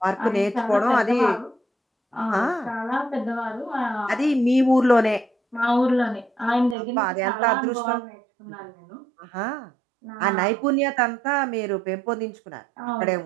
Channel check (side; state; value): left; drops out; at 6.8 s